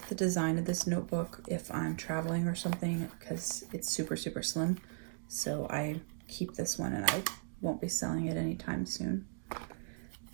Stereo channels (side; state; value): left; silent; digital silence